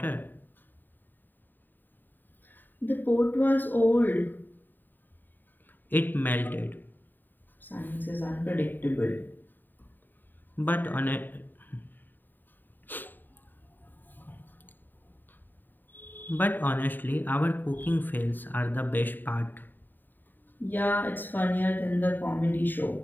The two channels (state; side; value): late; right; 0.091 ms